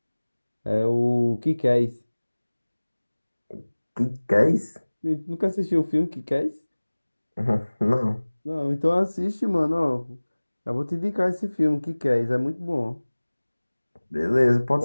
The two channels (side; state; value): both; inverted; correlation -1.00